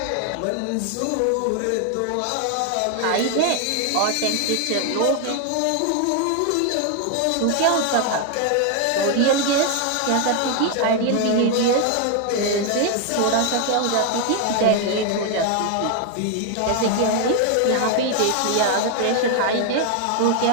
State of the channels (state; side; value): different; both; correlation 0.01